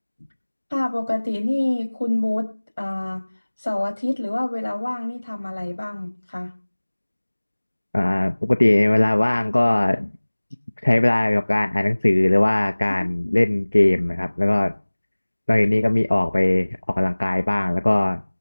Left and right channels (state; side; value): inverted; both; correlation -1.00